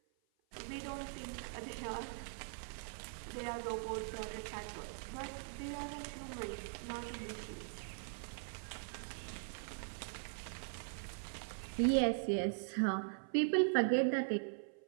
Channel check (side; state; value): left; silent; 50 dB below the other